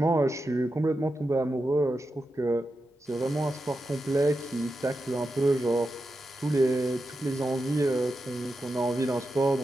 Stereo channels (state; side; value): normal; both; correlation 0.89